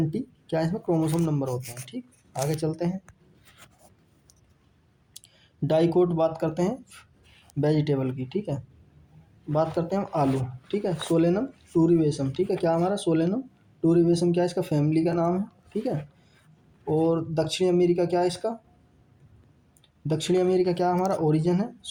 क्या इसमें क्रोमोसोम नंबर होते हैं, ठीक। आगे चलते हैं, डाइकोट बात करते हैं वेजिटेबल की, ठीक है। बात करते हैं हम आलू, ठीक है। सोलेनम टूरिवेशम, ठीक है, क्या हमारा सोलेनम टूरिवेशम क्या है इसका फैमिली का नाम है, ठीक है। और दक्षिणी अमेरिका क्या है इसका, दक्षिणी अमेरिका क्या हमारा ओरिजिन है,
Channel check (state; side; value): identical; both; correlation 1.00